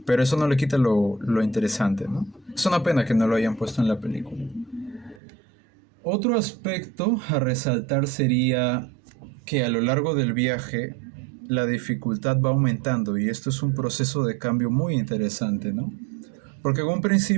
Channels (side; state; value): left; drops out; at 5.2 s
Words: pero eso no le quita lo interesante, ¿no? Es una pena que no lo hayan puesto en la película. Otro aspecto a resaltar sería que a lo largo del viaje la dificultad va aumentando y esto es un proceso de cambio muy interesante, ¿no? Porque en un